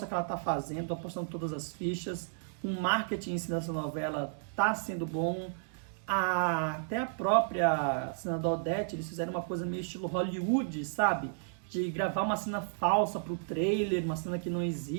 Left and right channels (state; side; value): silent; left; digital silence